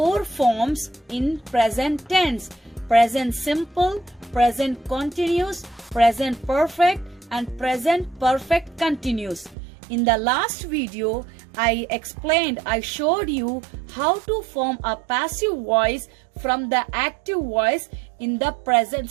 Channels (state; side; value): drops out; left; at 9.6 s